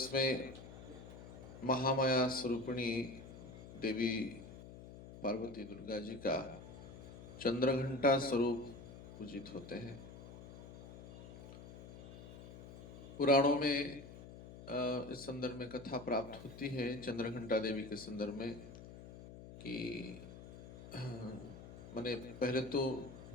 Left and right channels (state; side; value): noise; left; hum, 14 dB below the sound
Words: में महामाया स्वरूपिणी देवी पार्वती दुर्गा जी का चंद्रघंटा स्वरूप पूजित होते हैं। पुराणों में इस संदर्भ में कथा प्राप्त होती है चंद्रघंटा देवी के संदर्भ में कि मैंने पहले तो